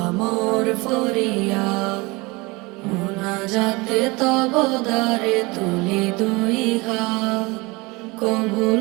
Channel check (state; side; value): quieter; left; 24.6 dB